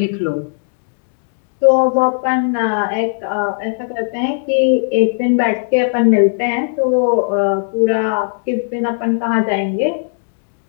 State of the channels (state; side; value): silent; right; digital silence